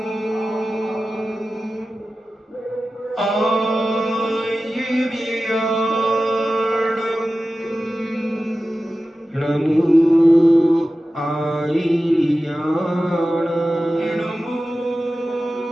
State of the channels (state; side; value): normal; both; correlation 0.94